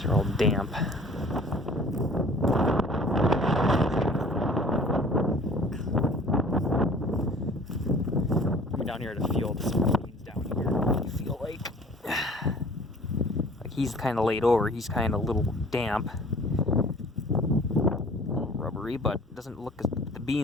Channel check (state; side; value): normal; both; correlation 0.49